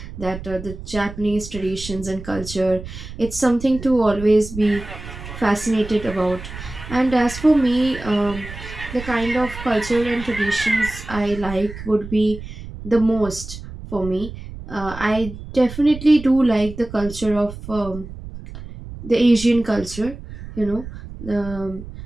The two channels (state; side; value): noise; right; rumble, 12 dB below the sound